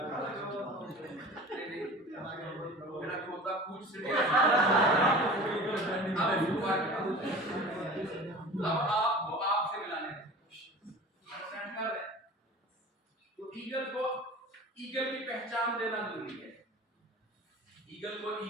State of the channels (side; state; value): both; normal; correlation 0.39